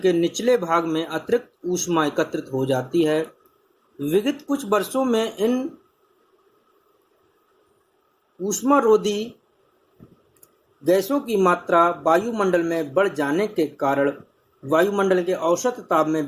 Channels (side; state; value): both; identical; correlation 1.00